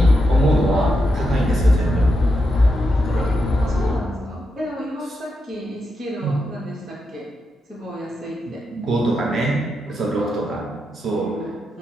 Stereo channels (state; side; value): normal; both; correlation 0.85